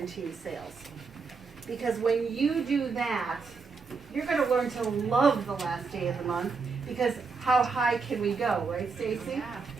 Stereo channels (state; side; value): quieter; left; 4.9 dB